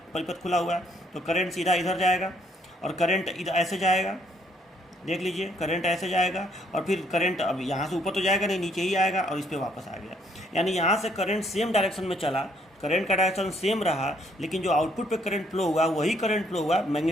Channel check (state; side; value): normal; both; correlation 0.68